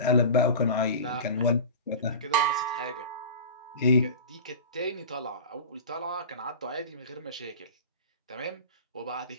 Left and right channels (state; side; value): inverted; both; correlation -0.33